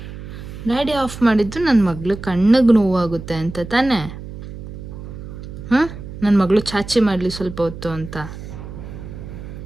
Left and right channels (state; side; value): noise; right; hum, 11 dB below the sound